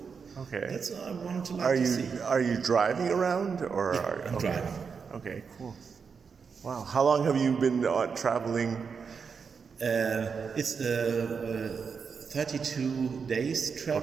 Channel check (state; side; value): quieter; left; 5.8 dB